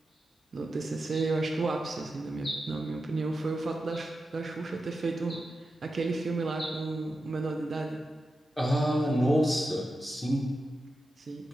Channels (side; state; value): both; normal; correlation 0.90